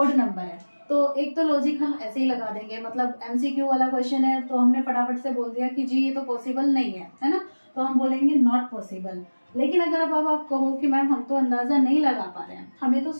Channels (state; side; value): inverted; both; correlation -1.00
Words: नंबर है। तो एक तो लॉजिक हम ऐसे ही लगा देंगे, मतलब एमसीक्यू वाला क्वेश्चन है तो हमने फटाफट से बोल दिया कि जी ये तो पॉसिबल नहीं है ना, तो हम बोलेंगे नॉट पॉसिबल। लेकिन अगर अब आप कहो कि मैम हम तो अंदाजा नहीं लगा पा रहे हैं, हमें तो